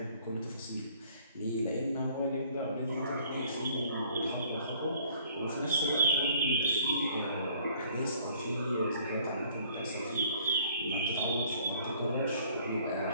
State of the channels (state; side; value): inverted; both; correlation -0.58